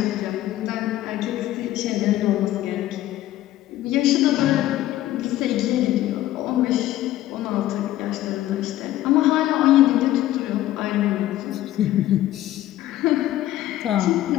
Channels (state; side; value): quieter; right; 14.3 dB